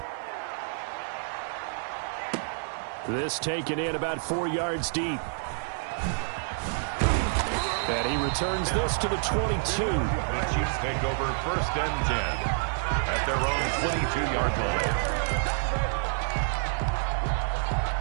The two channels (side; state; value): left; silent; digital silence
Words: This taken in about 4 yards deep. And he returns this to the 22. The Chiefs take over first and 10 at their own 22-yard line.